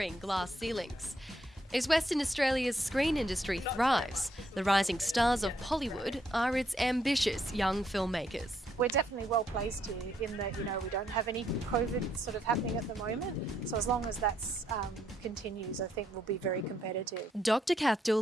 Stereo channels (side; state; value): both; normal; correlation 0.74